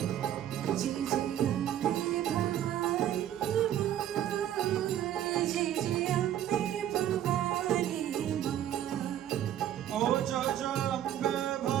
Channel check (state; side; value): quieter; left; 11.2 dB